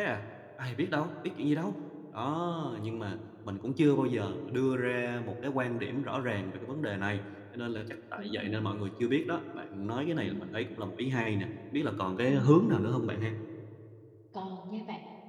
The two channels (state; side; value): identical; both; correlation 1.00